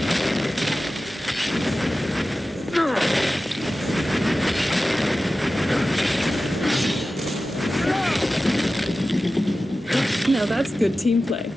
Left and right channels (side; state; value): both; normal; correlation 0.95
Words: Now that's good team play.